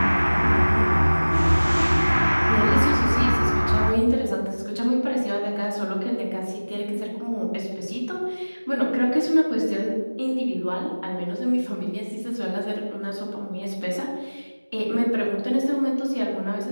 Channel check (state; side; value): inverted; both; correlation -1.00